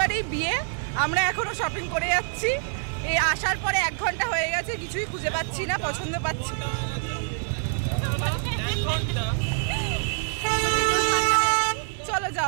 বিয়ে। আমরা এখনো শপিং করে যাচ্ছি। এই আসার পরে 1 ঘন্টা হয়ে গেছে, কিছুই খুঁজে পাচ্ছি না, পছন্দ পাচ্ছি না। চলো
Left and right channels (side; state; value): left; silent; digital silence